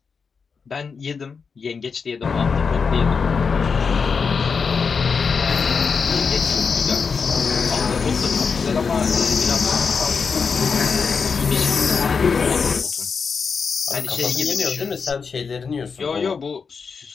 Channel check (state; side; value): quieter; right; 5.5 dB